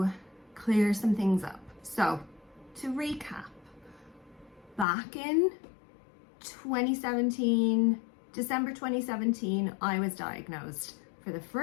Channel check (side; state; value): right; drops out; at 4.9 s